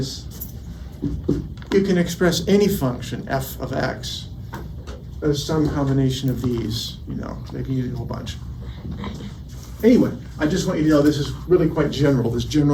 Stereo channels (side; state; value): both; identical; correlation 1.00